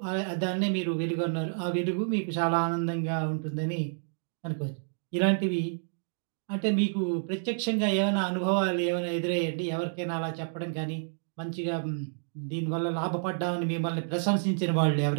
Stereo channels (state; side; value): silent; left; digital silence